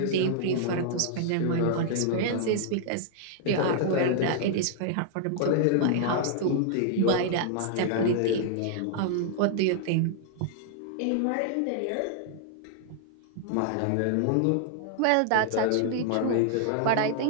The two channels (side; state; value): both; different; correlation -0.01